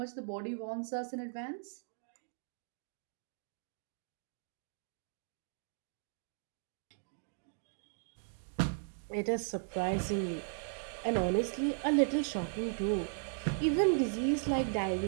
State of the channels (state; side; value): silent; left; digital silence